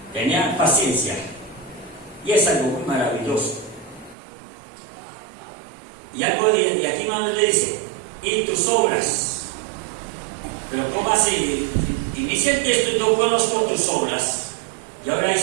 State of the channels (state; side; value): drops out; left; at 4.2 s